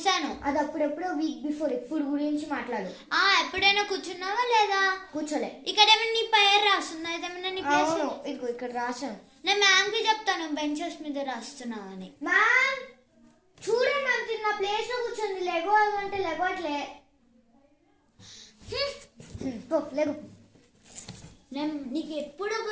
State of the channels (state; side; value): identical; both; correlation 1.00